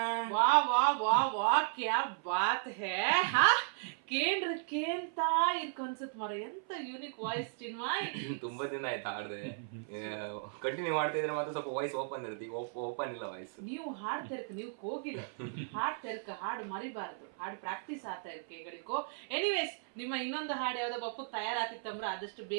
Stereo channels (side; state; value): left; silent; 54 dB below the other